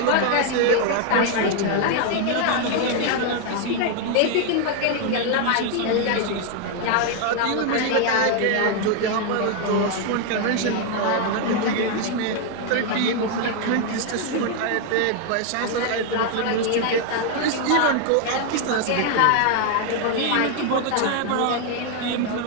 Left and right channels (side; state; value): both; different; correlation 0.01